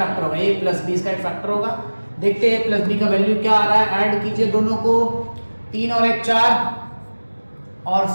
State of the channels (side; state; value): both; inverted; correlation -1.00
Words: होगा, a प्लस बी इसका एक फैक्टर होगा। देखते हैं a प्लस बी का वैल्यू क्या आ रहा है। ऐड कीजिए दोनों को, 3 और 1 4 और